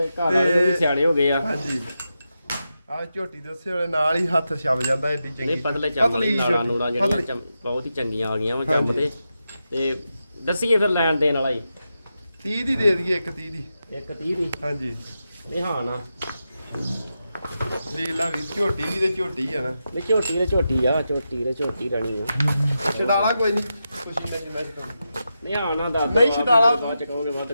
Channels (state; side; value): inverted; both; correlation -0.88